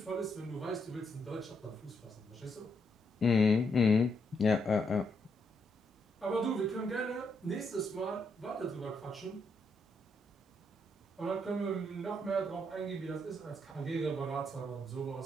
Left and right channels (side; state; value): both; normal; correlation 0.77